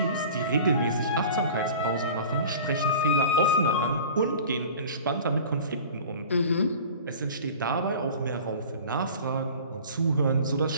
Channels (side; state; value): both; inverted; correlation -0.41